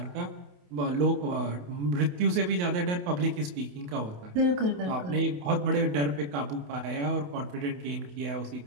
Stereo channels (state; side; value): late; left; 28 ms